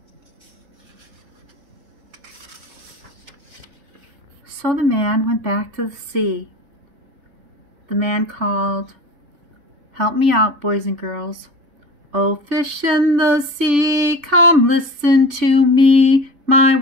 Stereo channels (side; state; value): left; late; 3.5 ms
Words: So the man went back to the sea. The man called, "Help me out, boys and girls. Oh, fish in the sea, come listen to me. My